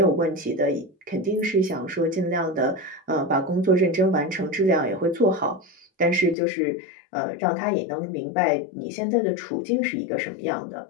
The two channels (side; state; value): right; drops out; at 6.4 s